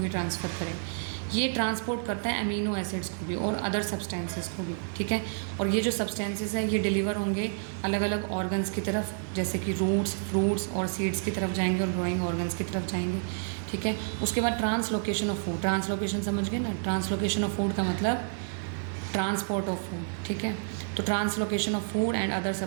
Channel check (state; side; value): silent; left; 58 dB below the other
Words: ट्रांसफ़र करें, ये ट्रांसपोर्ट करता है अमीनो एसिड्स को भी और अदर सब्सटेंसेस को भी। ठीक है, और ये जो सब्सटेंसेस है ये डिलीवर होंगे अलग अलग ऑर्गन्स की तरफ, जैसे कि रूट्स, फ्रूट्स और सीड्स की तरफ जाएंगे, और ग्रोइंग ऑर्गन्स की तरफ जाएंगे। ठीक है, उसके बाद ट्रांसलोकेशन ऑफ फूड। ट्रांसलोकेशन समझ गए ना, ट्रांसलोकेशन ऑफ फूड का मतलब ट्रांसपोर्ट ऑफ फूड। ठीक है, तो translocation of food and other